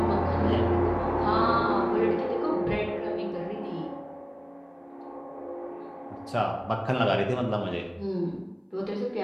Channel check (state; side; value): identical; both; correlation 1.00